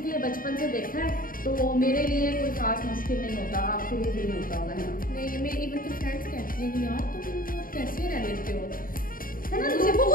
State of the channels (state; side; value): late; right; 0.41 ms